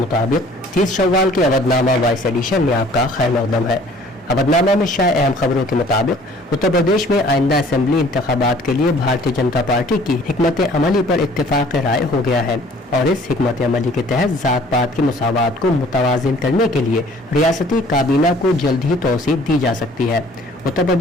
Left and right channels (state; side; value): normal; both; correlation 0.53